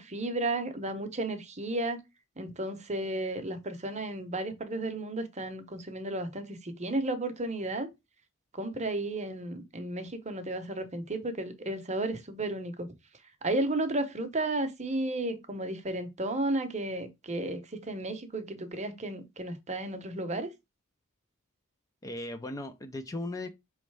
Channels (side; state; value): both; normal; correlation 0.26